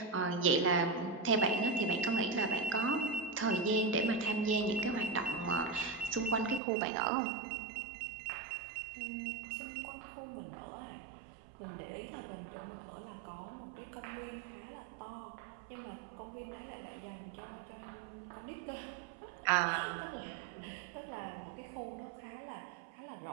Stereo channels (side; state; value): left; drops out; at 6.6 s